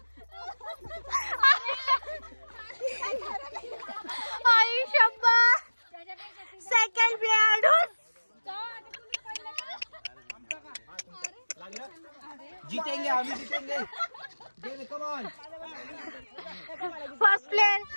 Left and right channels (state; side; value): inverted; both; correlation -1.00